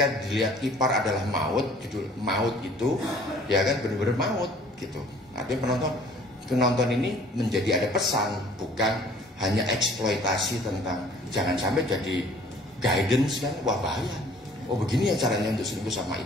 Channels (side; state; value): both; normal; correlation 0.53